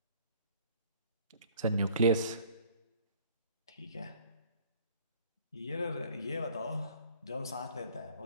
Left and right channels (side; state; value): both; inverted; correlation -0.53